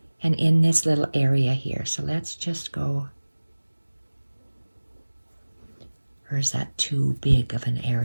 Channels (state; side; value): inverted; both; correlation -1.00